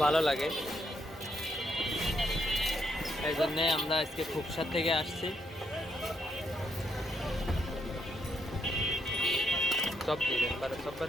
ভালো লাগে, এই জন্যে আমরা আজকে খুবসার থেকে আসছি। সব দিবেন সব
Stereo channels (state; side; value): normal; both; correlation 0.77